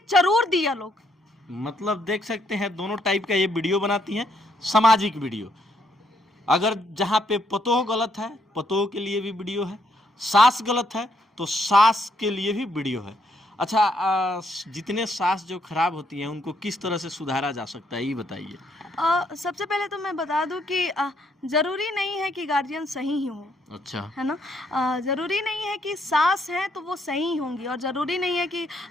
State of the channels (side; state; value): both; normal; correlation 0.73